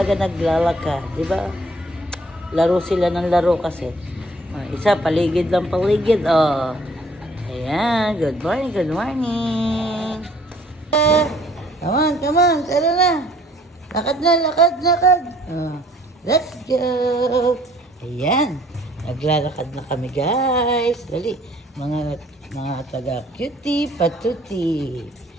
naglalakad. Diba? Laro sila ng laro kasi. Isa, paligid lang paligid. Oh. Ayan, good morning, good morning. Come on, tara na. Lakad na, lakad. Let's go. Ayan, naglalakad na kami guys. Dali, mga taga-cutie, patuti.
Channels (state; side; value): normal; both; correlation 0.58